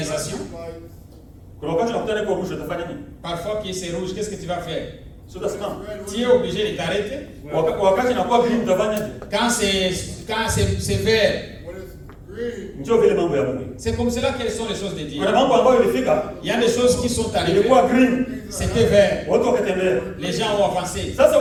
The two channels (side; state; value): both; identical; correlation 1.00